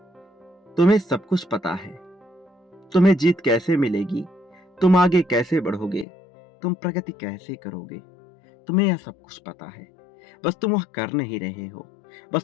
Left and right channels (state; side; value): drops out; right; at 6.1 s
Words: तुम्हें सब कुछ पता है, तुम्हें जीत कैसे मिलेगी, तुम आगे कैसे बढ़ोगे, तुम प्रगति कैसे करोगे। तुम्हें यह सब कुछ पता है, बस तुम वह कर नहीं रहे हो, बस